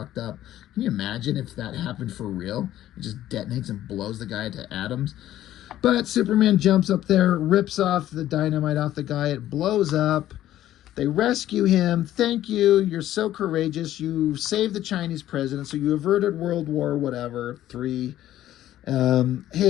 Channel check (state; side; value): quieter; right; 13.1 dB